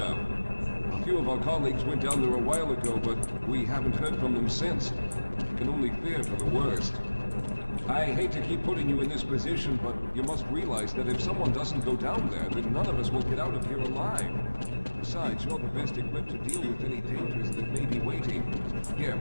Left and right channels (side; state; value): both; inverted; correlation -1.00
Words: A few of our colleagues went down there a while ago, but we haven't heard from them since. I can only fear for the worst. I hate to keep putting you in this position, but you must realize that if someone doesn't go down there, then none of us will get out of here alive. Besides, you're the best equipped to deal with any dangers that may be waiting. Here,